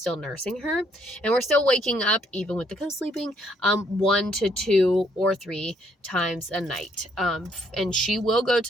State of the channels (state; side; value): normal; both; correlation 0.69